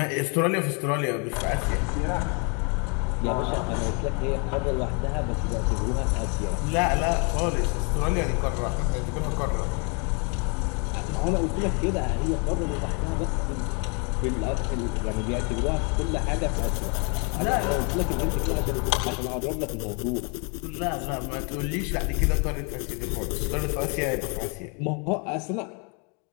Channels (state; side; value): quieter; right; 35.3 dB